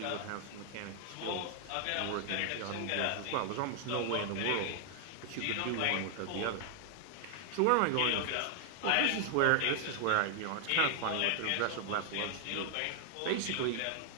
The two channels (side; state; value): both; different; correlation 0.00